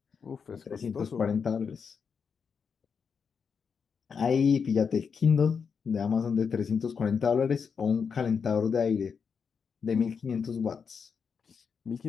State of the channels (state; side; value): quieter; right; 6.2 dB